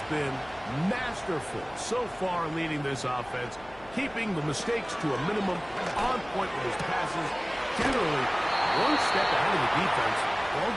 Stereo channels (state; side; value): noise; left; hum, 22 dB below the sound